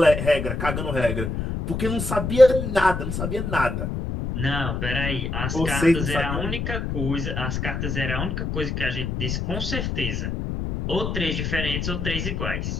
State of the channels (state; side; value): noise; left; rumble, 3 dB below the sound